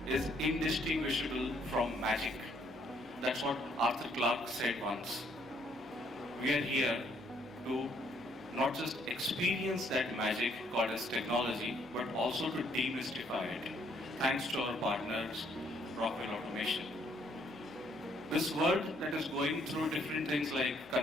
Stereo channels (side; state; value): both; normal; correlation 0.68